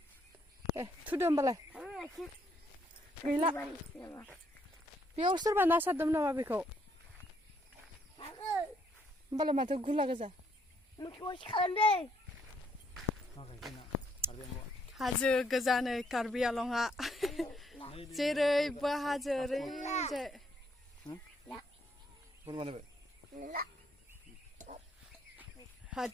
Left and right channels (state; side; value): normal; both; correlation 0.71